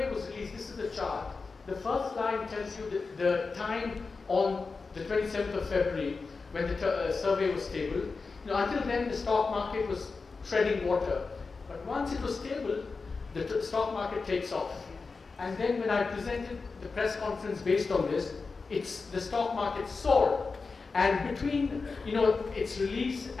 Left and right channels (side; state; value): right; quieter; 4.3 dB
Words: was released, this is the chart. The first line tells you the time on the 27th of February when the survey was stable. Until then, the stock market was treading water. But once it was stable, the stock market takes off. And then when I presented the press conference based on this, the stock market soared. And between its release